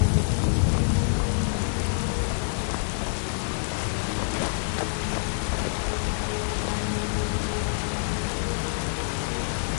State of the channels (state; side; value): silent; right; digital silence